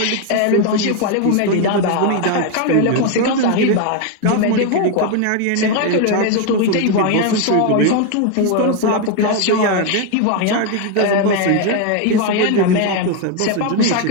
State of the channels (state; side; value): different; both; correlation 0.01